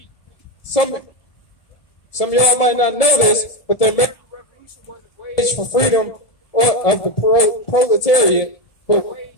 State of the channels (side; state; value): right; late; 1.7 ms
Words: Some of y'all might not know this, but the American Revolution wasn't waged for freedom of the proletariat, but